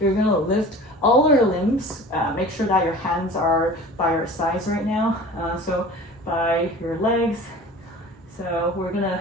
you're gonna lift all your limbs. Make sure that your hands are by your sides right now. So by your legs. So we're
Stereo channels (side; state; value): both; normal; correlation 0.41